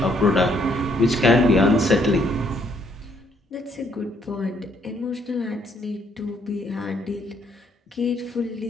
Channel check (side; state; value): both; normal; correlation 0.69